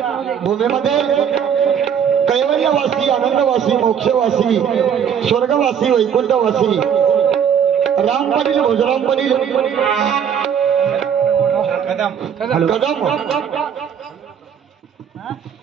भूमीमध्ये कैवल्यवासी, आनंदवासी, मोक्षवासी, स्वर्गवासी, वैकुंठवासी राम पाटील, भोजराम पाटील कदम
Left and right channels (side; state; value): left; quieter; 8.1 dB